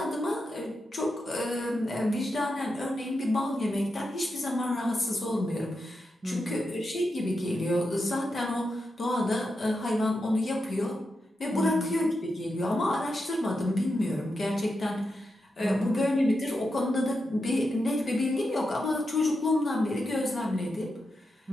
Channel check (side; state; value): both; normal; correlation 0.87